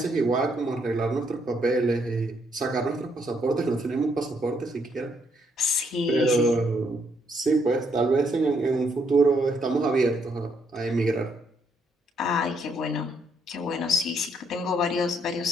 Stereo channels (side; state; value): both; normal; correlation 0.72